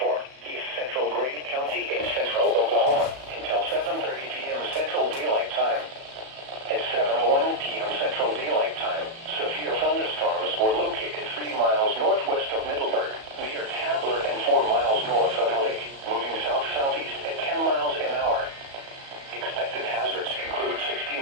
east central Grady County and central Oklahoma until 7:30 p.m. Central Daylight Time. At 7:01 p.m. Central Daylight Time, severe thunderstorms were located 3 miles northwest of Middleburg, near Tabler, and 4 miles north of Halleck, moving south-southeast at 10 miles an hour. Expected hazards include 60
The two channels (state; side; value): late; left; 37 ms